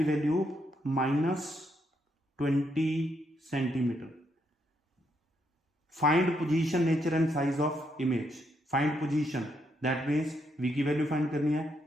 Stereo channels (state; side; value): normal; both; correlation 0.77